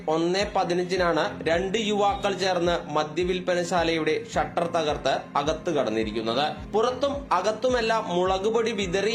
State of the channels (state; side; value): identical; both; correlation 1.00